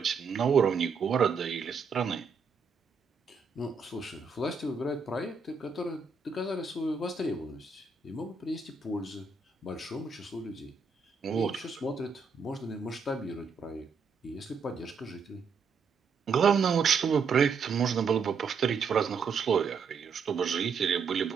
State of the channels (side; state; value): left; quieter; 5.3 dB